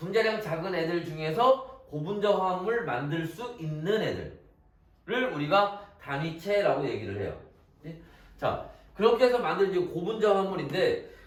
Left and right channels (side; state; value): both; identical; correlation 1.00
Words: 작은 애들 중에서 고분자 화합물 만들 수 있는 애들을 우리가 단위체라고 얘기를 해요. 자, 그렇게 해서 만든 이제 고분자 화합물인데